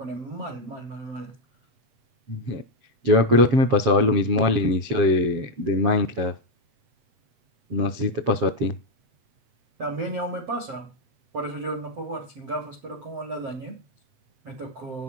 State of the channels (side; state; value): left; late; 7.4 ms